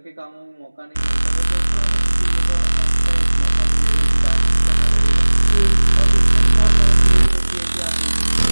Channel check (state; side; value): inverted; both; correlation -1.00